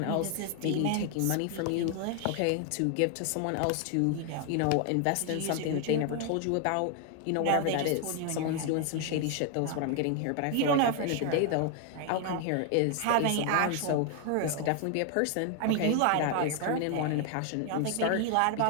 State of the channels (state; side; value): different; both; correlation 0.00